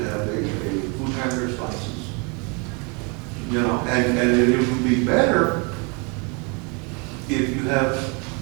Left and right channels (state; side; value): quieter; left; 32.7 dB